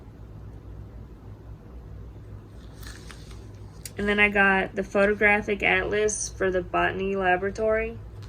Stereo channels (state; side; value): identical; both; correlation 1.00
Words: And then I got the photographic atlas for the botany laboratory.